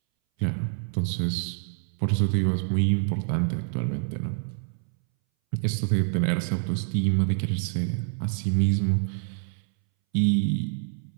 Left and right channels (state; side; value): silent; left; 60 dB below the other